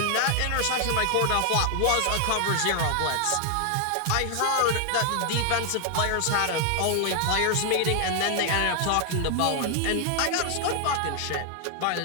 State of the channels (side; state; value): both; different; correlation 0.00